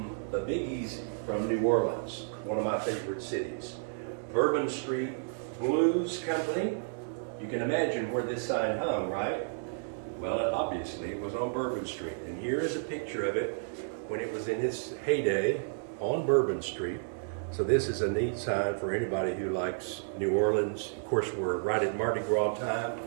the Biggies from New Orleans, one of my favorite cities. Bourbon Street Blues Company. You can imagine where this sign hung, right? Well, obviously it was on Bourbon Street. And here is a picture of it when it was in its heyday on Bourbon Street. So this is a neat sign for anybody who likes New Orleans. Of course, we're right at Mardi Gras time,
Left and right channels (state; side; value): silent; left; digital silence